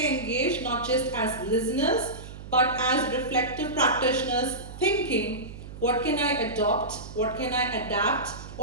engaged, not just as listeners, but as reflective practitioners thinking, what can I adopt, what can I adapt,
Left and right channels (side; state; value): right; noise; hum, 13 dB below the sound